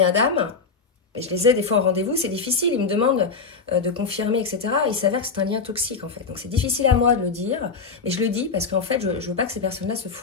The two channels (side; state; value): right; quieter; 4.8 dB